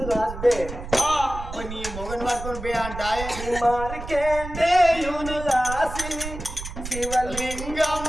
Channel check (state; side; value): noise; right; rumble, 9 dB below the sound